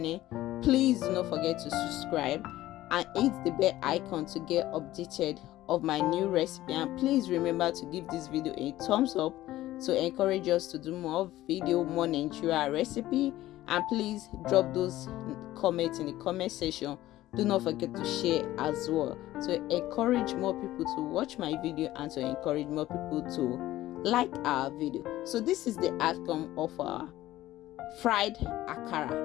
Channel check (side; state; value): right; quieter; 15.3 dB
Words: please do not forget to subscribe and hit the bell icon to get updated of my new recipe. And please remember to give this video a thumbs up to encourage us to do more Nigeria recipe. And please drop those comments in the comment section. Do not forget to share as well to encourage more people to watch my video and to encourage more people to like our video. So this is the outcome of our fried